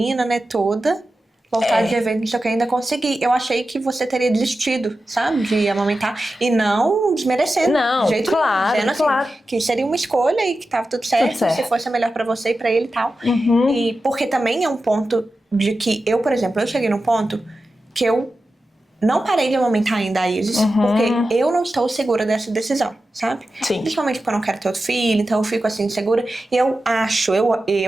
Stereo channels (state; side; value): normal; both; correlation 0.92